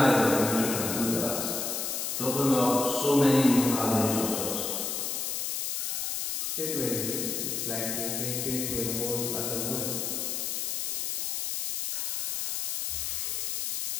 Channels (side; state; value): left; noise; hiss, 1 dB below the sound